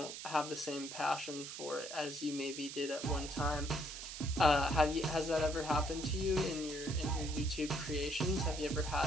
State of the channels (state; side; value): noise; right; hiss, 9 dB below the sound